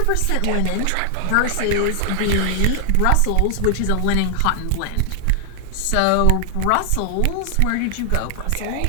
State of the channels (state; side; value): different; both; correlation 0.00